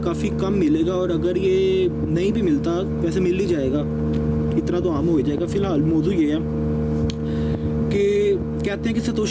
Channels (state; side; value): identical; both; correlation 1.00